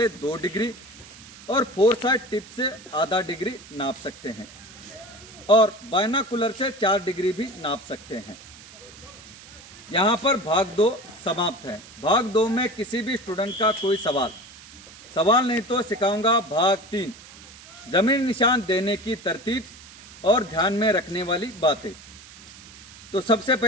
2 डिग्री और 4 साइड टिप से आधा डिग्री नाप सकते हैं और बायनाकुलर से 4 डिग्री भी नाप सकते हैं। यहाँ पर भाग 2 समाप्त है। भाग 2 में किसी भी स्टूडेंट का कोई सवाल नहीं तो सिखाऊंगा भाग 3, जमीन निशान देने की तरतीब और ध्यान में रखने वाली बातें। तो सबसे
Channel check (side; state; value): right; noise; hiss, 19 dB below the sound